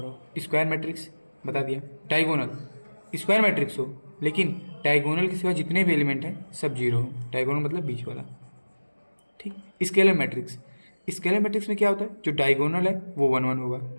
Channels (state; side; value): inverted; both; correlation -1.00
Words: स्क्वायर मैट्रिक्स बता दिया। डायगोनल स्क्वायर मैट्रिक्स हो लेकिन डायगोनल के सिवा जितने भी एलिमेंट हैं सब जीरो हो। डायगोनल मतलब बीच वाला। ठीक। स्केलर मैट्रिक्स, स्केलर मैट्रिक्स में क्या होता है, जो डायगोनल है वो 1 1 होगा